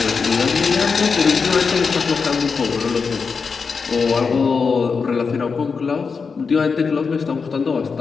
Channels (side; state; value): right; quieter; 5.2 dB